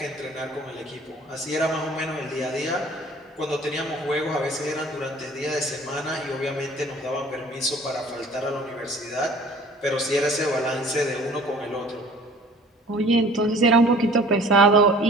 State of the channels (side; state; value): both; normal; correlation 0.49